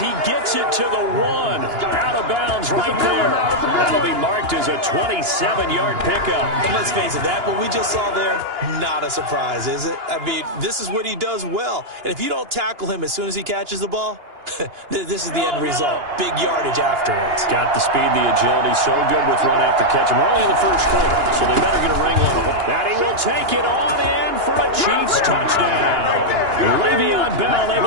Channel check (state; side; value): late; left; 2.9 ms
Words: gets it to the 1. Out of bounds right there. That'll be marked as a 27-yard pickup. And let's face it, that what we just saw there, not a surprise, is it? I mean, this is what he does well. And if you don't tackle him as soon as he catches the ball, this is the end result. Big yardage afterwards. Got the speed, the agility, so good with run after catch. We're only in the first quarter, so they better get a wrangle on him. And he will take it on in for a Chiefs touchdown. Le'Veon Bell